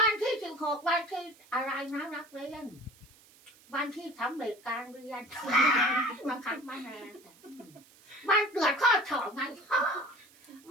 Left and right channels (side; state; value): right; noise; hiss, 26 dB below the sound